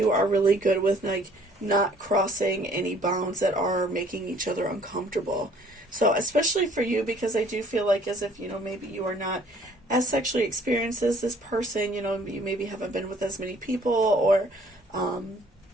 are really good with, like, not crossing any bounds that are making each other uncomfortable. So, especially for you, because I do feel like as if, you know, maybe you are not as sexually experienced as this person, you know, you maybe haven't been with as many people, or,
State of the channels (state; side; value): normal; both; correlation 0.58